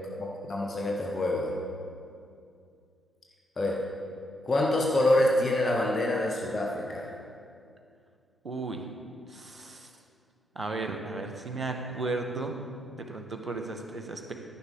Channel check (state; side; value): normal; both; correlation 0.79